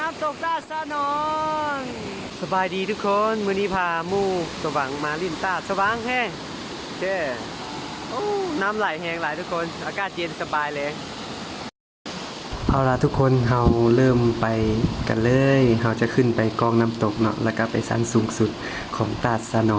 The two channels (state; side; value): identical; both; correlation 1.00